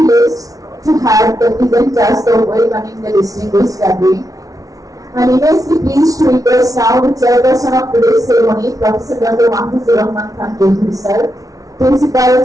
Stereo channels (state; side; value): late; left; 0.17 ms